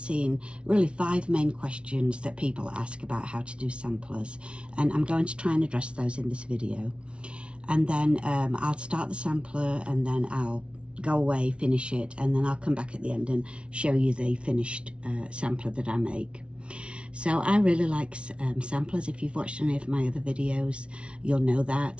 really 5 main questions that people ask about how to do samplers, and I'm going to try and address those in this video. And then I'll start the sampler, and then I'll go away, finish it, and then I'll come back at the end and show you the finished sampler that I make. So I really like samplers. If you've watched any of my other videos, you'll know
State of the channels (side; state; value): left; late; 0.059 ms